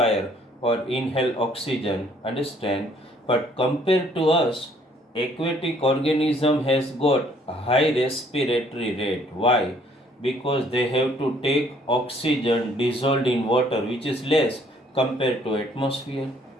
or inhale oxygen, understand? But compared to us, aquatic organism has got a high respiratory rate. Why? Because they have to take oxygen dissolved in water, which is less compared to atmosphere.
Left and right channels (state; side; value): normal; both; correlation 0.62